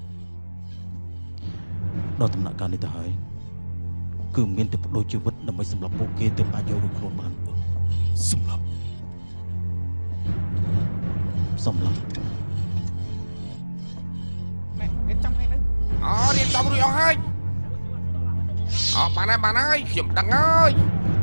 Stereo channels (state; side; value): inverted; both; correlation -1.00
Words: ដល់ដំណាក់កាលនេះទៅហើយគឺមានតែបដូរជីវិតដើម្បីសម្រាប់ពួកគេទើបអាចយករួចខ្លួនបានសម្រាប់ សំឡេង ណែគេចាំឲ្យនៅ រៀបចំរួចអស់ហើយបានហើយខ្ញុំដឹងហើយ